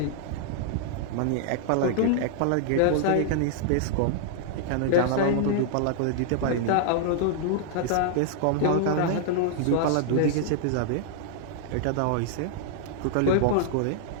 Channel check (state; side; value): different; both; correlation -0.01